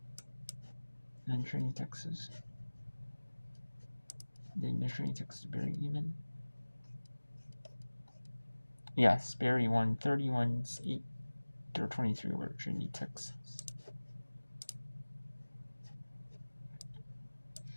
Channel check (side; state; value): both; inverted; correlation -1.00